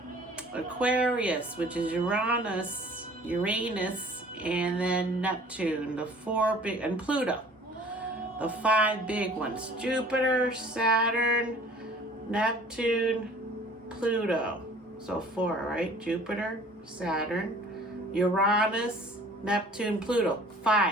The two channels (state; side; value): normal; both; correlation 0.50